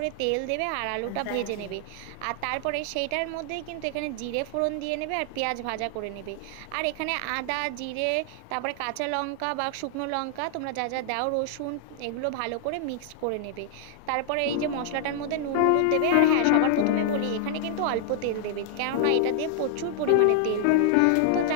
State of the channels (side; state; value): both; different; correlation -0.01